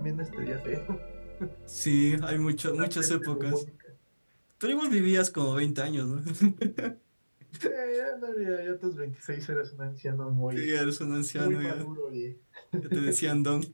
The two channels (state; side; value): inverted; both; correlation -1.00